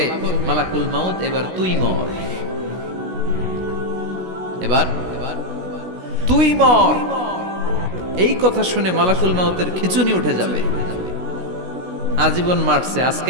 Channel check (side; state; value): left; late; 16 ms